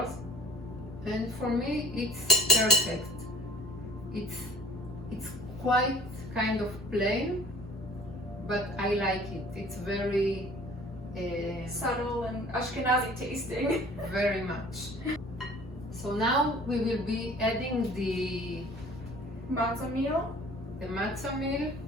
And for me, it's perfect. It's quite kind of plain, but I like it. It's very subtle and Ashkenazi tasting. very much. So now we will be adding the Matzah meal. matzah meal.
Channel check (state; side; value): normal; both; correlation 0.47